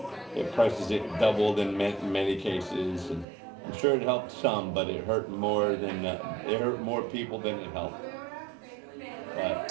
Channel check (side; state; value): left; drops out; at 3.2 s